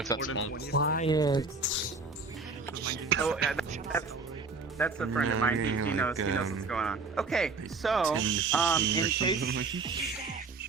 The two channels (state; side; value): quieter; left; 4.2 dB